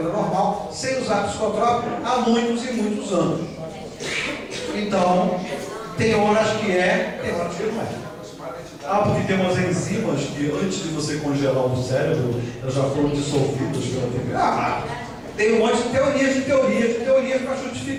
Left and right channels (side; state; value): both; identical; correlation 1.00